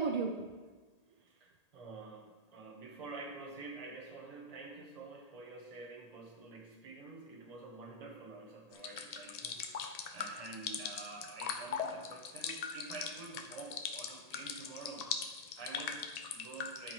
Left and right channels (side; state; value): right; late; 1.8 ms